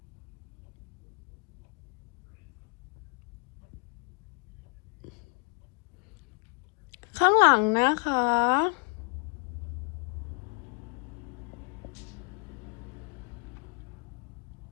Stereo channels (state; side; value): quieter; right; 33.7 dB